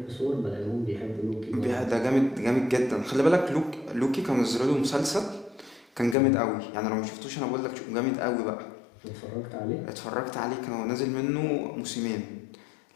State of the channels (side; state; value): right; drops out; at 6.2 s